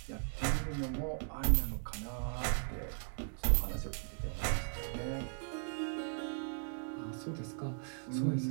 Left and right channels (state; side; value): silent; left; digital silence